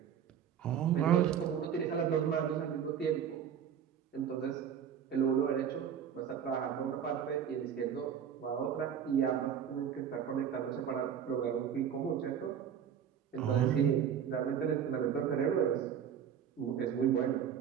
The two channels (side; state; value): left; quieter; 8.4 dB